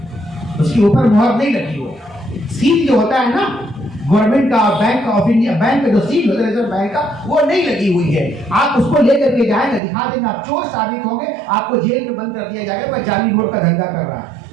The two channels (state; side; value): drops out; left; at 9.8 s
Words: اس کے اوپر مہر نہیں لگی ہو. سیل جو ہوتا ہے نا گورنمنٹ کا، بینک آف انڈیا، بینک کا جو سیل ہوتا ہے ریزرو بینک کا، وہ نہیں لگی ہوئی ہے. آپ اس کو لے کر کے جائیں گے، دکھا دیں گے، آپ چور ثابت ہوں گے، آپ کو جیل میں بند کر دیا جائے گا. جعلی نوٹ کا دھندا کر رہا ہے،